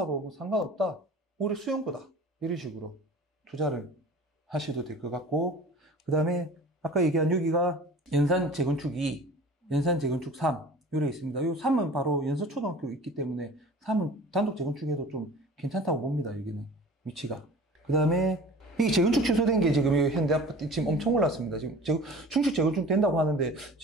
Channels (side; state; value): both; normal; correlation 0.43